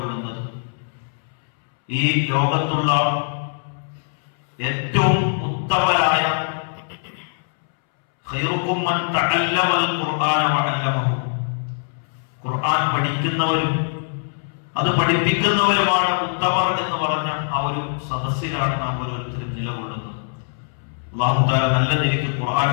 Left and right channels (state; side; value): silent; right; 64 dB below the other